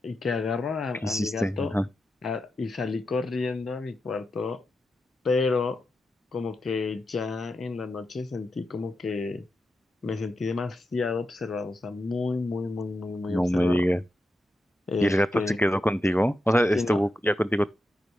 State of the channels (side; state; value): both; normal; correlation 0.88